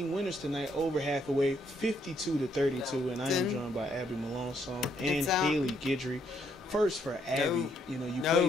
winners tonight over Hathaway, 52-32, and I am joined by Abby Melanson and Haley Guidry. First for Abby, you know, you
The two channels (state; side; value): normal; both; correlation 0.72